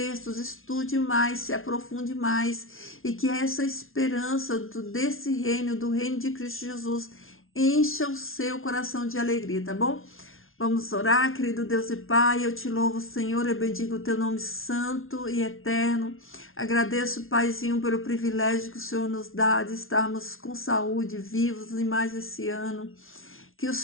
estude mais, se aprofunde mais, e que essa esperança desse reino, do reino de Cristo Jesus, encha o seu coração de alegria, tá bom? Vamos orar, querido Deus e Pai, eu te louvo, Senhor, eu bendigo o teu nome santo e eterno. Agradeço, Paizinho, pelo privilégio que o Senhor nos dá de estarmos com saúde, vivos em mais esse ano. Que o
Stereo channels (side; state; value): right; late; 0.61 ms